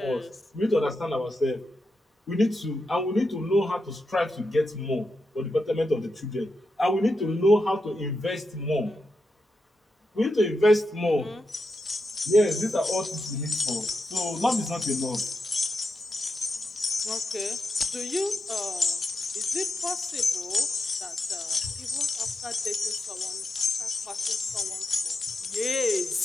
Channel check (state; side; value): normal; both; correlation 0.87